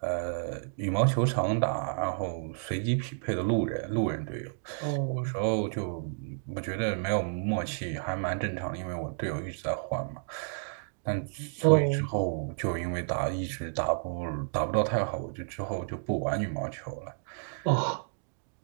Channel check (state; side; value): silent; left; digital silence